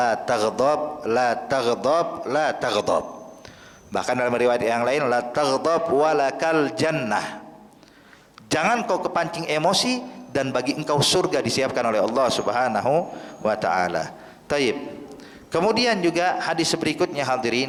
taghdab, la taghdab, la taghdab. Bahkan dalam riwayat yang lain, la taghdab walakal jannah, jangan kau kepancing emosi dan bagi engkau surga disiapkan oleh Allah Subhanahu wa taala. Taib. Kemudian juga hadis berikutnya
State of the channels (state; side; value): identical; both; correlation 1.00